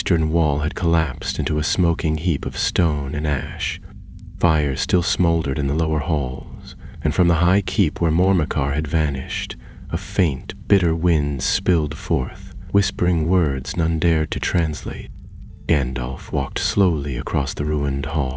wall had collapsed into a smoking heap of stone and ash. Fires still smoldered in the lower halls, and from the high keep where Mormakar had vanished, a faint, bitter wind spilled forth, whispering words none dared to translate. Gandalf walked slowly across the ruined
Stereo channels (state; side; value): identical; both; correlation 1.00